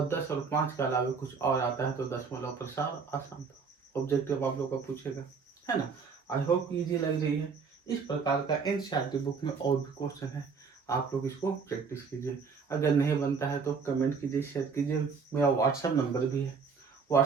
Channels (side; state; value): left; quieter; 5.4 dB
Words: 10 और 5 के अलावा कुछ और आता है तो दशमलव प्रसार अशांत। ऑब्जेक्टिव आप लोग का पूछेगा, है ना। आई होप इजी लग रही है। इस प्रकार का एनसीईआरटी बुक में और भी क्वेश्चन है, आप लोग इसको प्रैक्टिस कीजिए। अगर नहीं बनता है तो कमेंट कीजिए, शेयर कीजिए। मेरा व्हाट्सएप नंबर भी है,